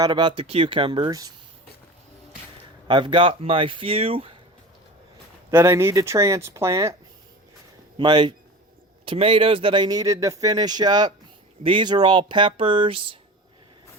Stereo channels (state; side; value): normal; both; correlation 0.34